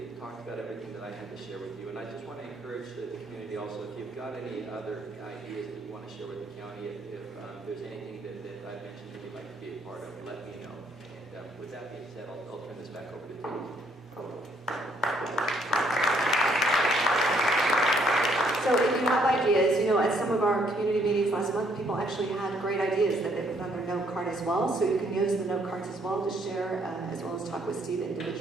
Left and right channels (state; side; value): normal; both; correlation 0.68